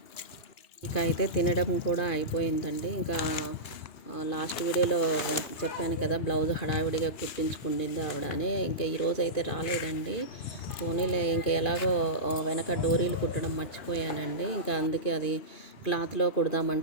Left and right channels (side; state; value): right; late; 2.5 ms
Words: ఇక అయితే తినడం కూడా అయిపోయిందండి. ఇంకా లాస్ట్ వీడియోలో చెప్పాను కదా, బ్లౌజ్ హడావిడిగా కుట్టించుకుండింది ఆవిడ అని. ఇంకా ఈరోజు అయితే రాలేదండి. పోనీలే, ఇంకా ఎలాగో వెనక డోరీలు కుట్టడం మర్చిపోయానండి. ఇంకా అందుకే అది క్లాత్లో